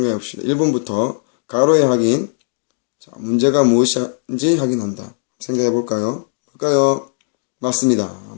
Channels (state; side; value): silent; right; digital silence